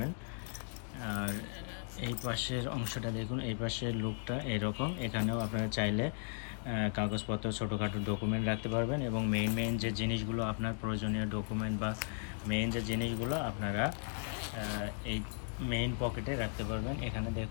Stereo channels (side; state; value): right; silent; 54 dB below the other